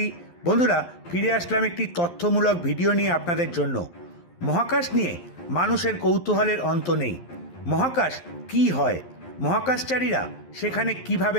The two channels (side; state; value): right; late; 11 ms